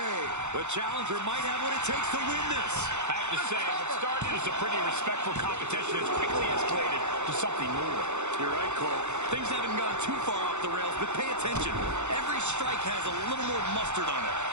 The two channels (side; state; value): left; late; 0.83 ms